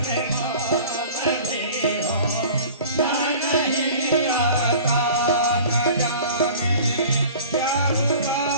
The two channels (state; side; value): inverted; both; correlation -0.43